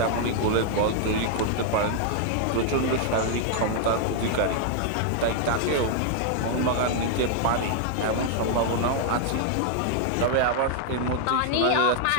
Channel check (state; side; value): different; both; correlation 0.00